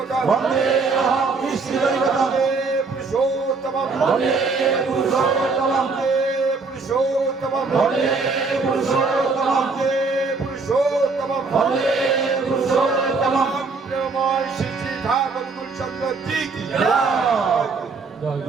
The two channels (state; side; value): quieter; left; 4.2 dB